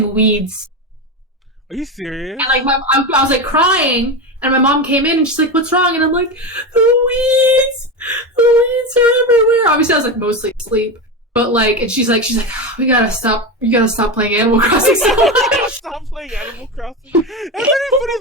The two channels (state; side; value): normal; both; correlation 0.18